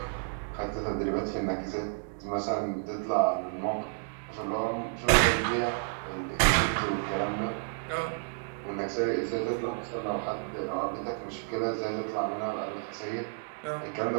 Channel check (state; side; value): silent; left; digital silence